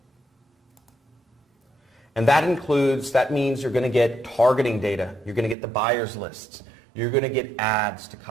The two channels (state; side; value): drops out; left; at 5.6 s